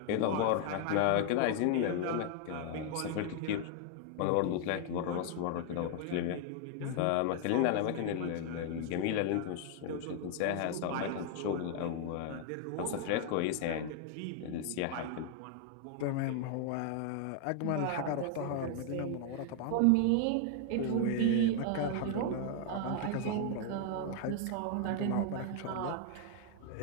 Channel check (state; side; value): different; both; correlation 0.00